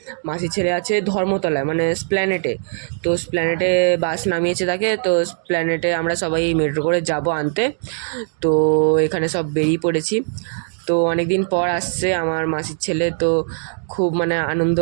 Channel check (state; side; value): silent; left; digital silence